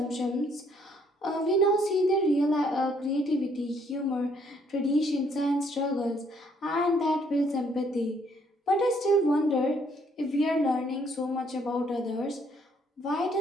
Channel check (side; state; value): both; normal; correlation 0.67